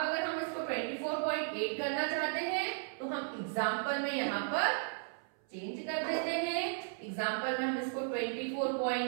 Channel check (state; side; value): silent; left; 54 dB below the other